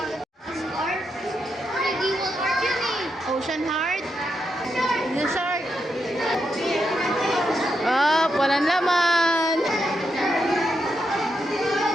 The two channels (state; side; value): normal; both; correlation 0.83